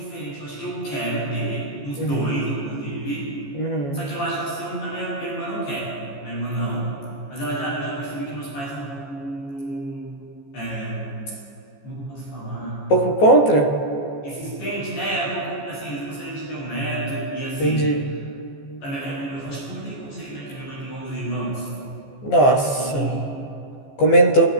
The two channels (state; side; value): late; right; 14 ms